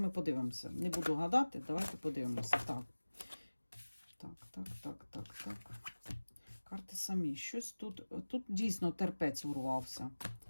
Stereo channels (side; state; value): both; inverted; correlation -1.00